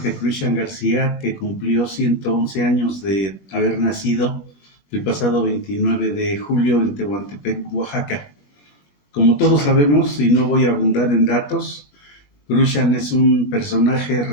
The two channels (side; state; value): right; late; 20 ms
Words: Cruixan García, que cumplió 111 años de haber nacido el pasado 29 de julio en Tehuantepec, Oaxaca. Como todos sabemos, y no voy a abundar en datos, Cruixan es un personaje